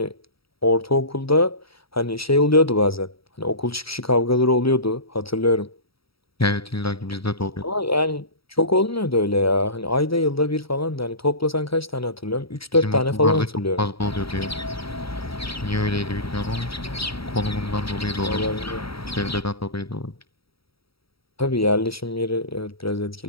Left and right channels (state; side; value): late; right; 0.75 ms